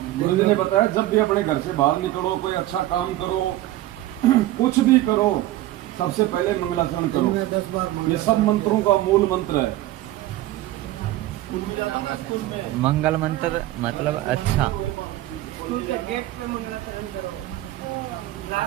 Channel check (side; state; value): left; quieter; 15.5 dB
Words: गुरु जी ने बताया जब भी अपने घर से बाहर निकलो, कोई अच्छा काम करो, कुछ भी करो, सबसे पहले मंगलाचरण करो। ये सब मंत्रों का मूल मंत्र है। मंगल मंत्र मतलब अच्छा। स्कूल के गेट पे मंगलाचरण करो,